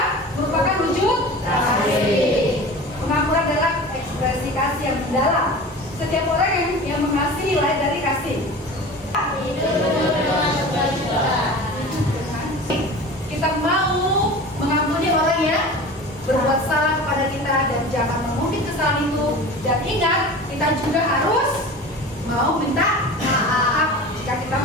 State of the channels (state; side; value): normal; both; correlation 0.36